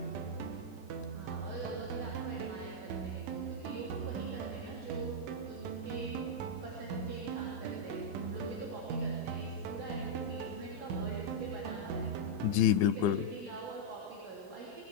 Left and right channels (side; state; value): right; late; 15 ms